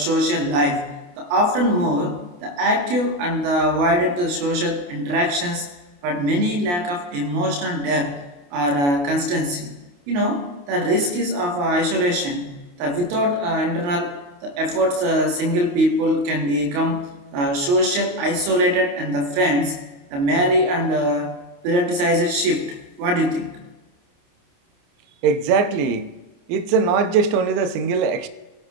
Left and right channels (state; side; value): late; left; 28 ms